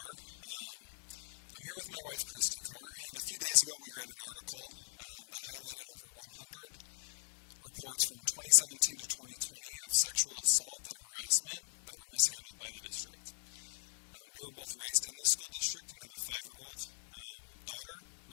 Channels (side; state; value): right; silent; 51 dB below the other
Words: I'm here with my wife, Christy Carr, and a few days ago we read an article that highlighted over 100 reports from 2017 to 2020 of sexual assault and harassment that were mishandled by the district. We were both raised in this school district and have a 5-year-old daughter